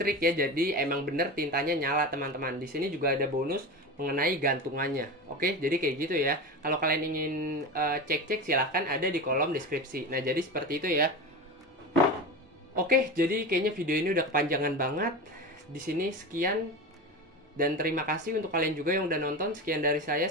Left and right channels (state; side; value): normal; both; correlation 0.25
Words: ya, jadi emang bener tintanya nyala teman-teman. Di sini juga ada bonus mengenai gantungannya. Oke, jadi kayak gitu ya. Kalau kalian ingin cek-cek silahkan ada di kolom deskripsi. Nah, jadi seperti itu ya. Oke, jadi kayaknya video ini udah kepanjangan banget. Di sini sekian, dan terima kasih untuk kalian juga yang udah nonton. Sekian dari saya